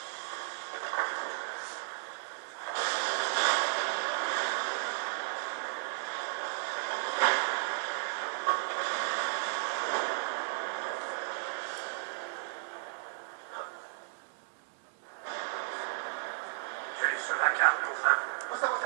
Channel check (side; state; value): left; silent; 55 dB below the other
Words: Sur la carte, enfin. Au